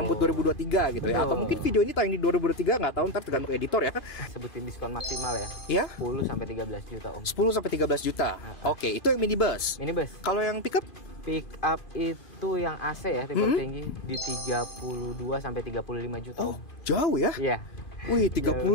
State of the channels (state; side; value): late; right; 2.9 ms